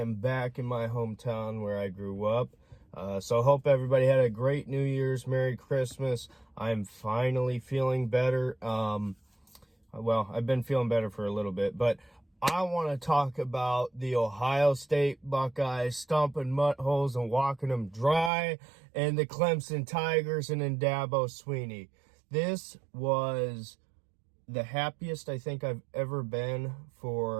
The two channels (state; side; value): drops out; left; at 18.3 s